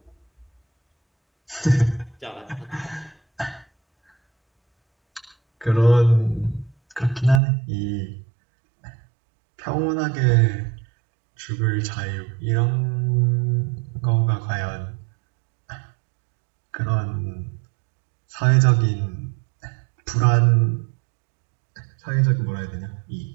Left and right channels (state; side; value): drops out; left; at 7.4 s